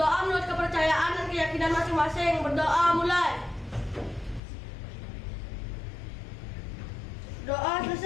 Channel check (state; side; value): drops out; right; at 4.4 s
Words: menurut kepercayaan dan keyakinan masing-masing. Berdoa mulai. Doa